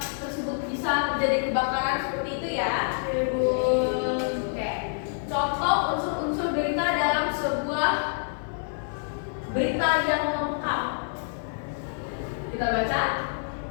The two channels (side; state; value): right; silent; 57 dB below the other